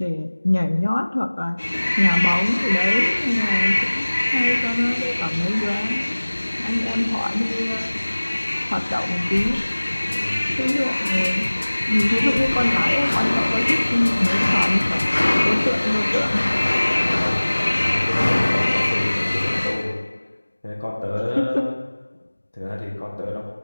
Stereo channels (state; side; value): inverted; both; correlation -1.00